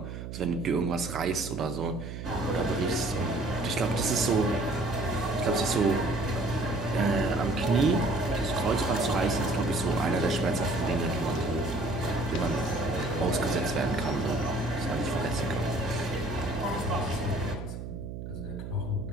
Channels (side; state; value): right; noise; hum, 8 dB below the sound